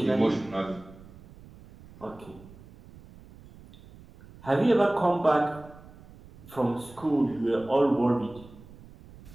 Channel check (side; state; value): right; noise; rumble, 21 dB below the sound